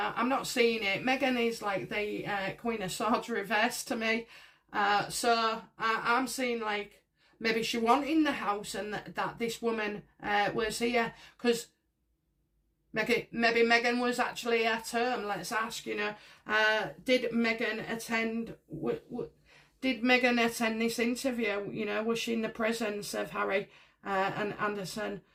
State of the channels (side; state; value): both; identical; correlation 1.00